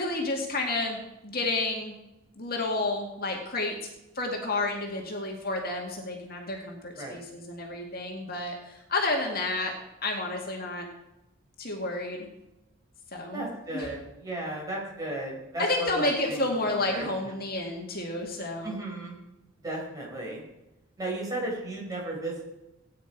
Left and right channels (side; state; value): both; normal; correlation 0.02